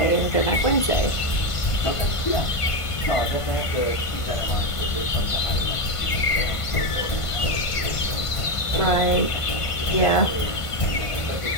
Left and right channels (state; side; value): late; right; 1.5 ms